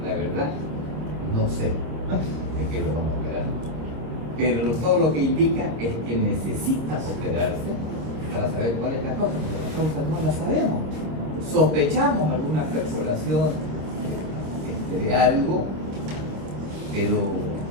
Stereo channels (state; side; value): late; left; 26 ms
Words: la verdad, no sé de qué lo vamos a operar. Pero todo lo que indica es que necesita operarse para saber cuál es la causa, porque la causa no la sabemos. Sospechamos alguna perforación de algo, pero